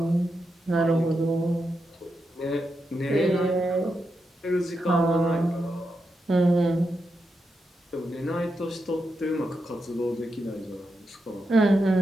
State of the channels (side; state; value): both; normal; correlation 0.86